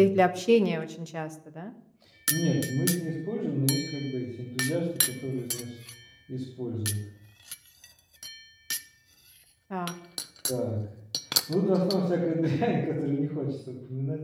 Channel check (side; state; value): both; identical; correlation 1.00